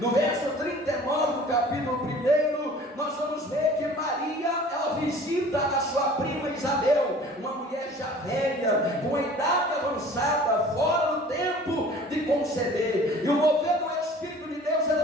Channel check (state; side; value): normal; both; correlation 0.47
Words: verso 39 do capítulo 1, nós vamos ver que Maria, ela visita a sua prima Isabel, uma mulher já velha, com a idade avançada, fora do tempo de conceber. E o mover do Espírito de Deus